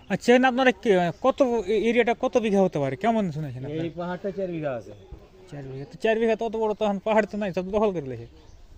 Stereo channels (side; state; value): both; identical; correlation 1.00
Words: আচ্ছা আপনারা কত এরিয়াটা কত বিঘা হতে পারে কেমন শুনেছেন? এই পাহাড়টা 4 বিঘা আছে। 4 বিঘা? তো 4 বিঘা তত বড় তখন পাহাড় তো নাই, সব দখল করে লেছে।